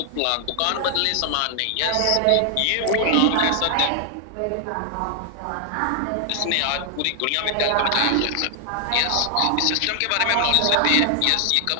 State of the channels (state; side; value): different; both; correlation 0.00